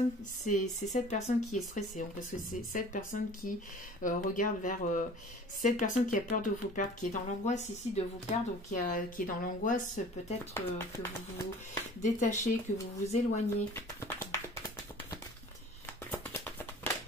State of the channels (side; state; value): both; normal; correlation 0.45